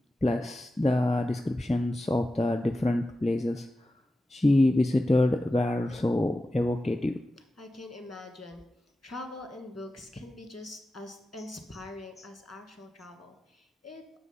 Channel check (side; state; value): both; normal; correlation 0.93